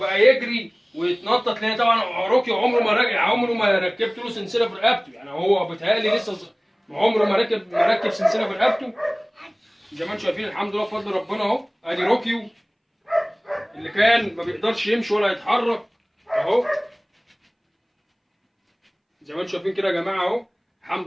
يجري ويتنطط. لان طبعا روكيو عمره ما ركبت له سلسله في رقبته، يعني هو بيتهيألي لسه عمره ما ركب سلسله في رقبته. زي ما انتم شايفين الحمد لله بفضل ربنا اهو. ادي روكيو اللي كان ما بيقدرش يمشي ولا يتحرك اهو. زي ما انتم شايفين كده يا جماعه اهو، الحمد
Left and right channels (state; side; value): identical; both; correlation 1.00